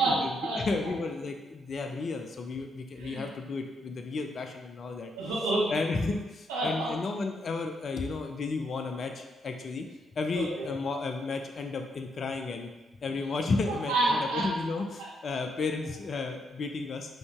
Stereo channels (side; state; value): both; normal; correlation 0.77